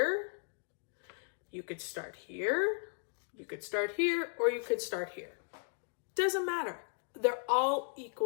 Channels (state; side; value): silent; right; 54 dB below the other